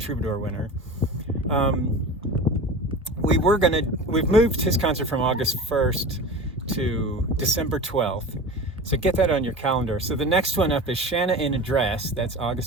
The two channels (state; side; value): normal; both; correlation 0.33